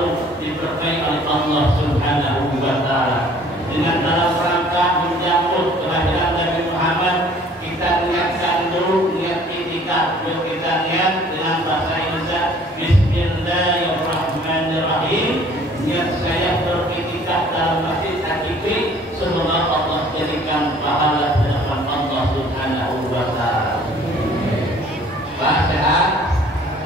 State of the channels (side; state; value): both; normal; correlation 0.54